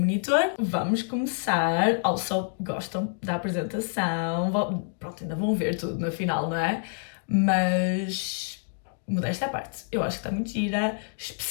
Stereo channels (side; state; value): right; silent; digital silence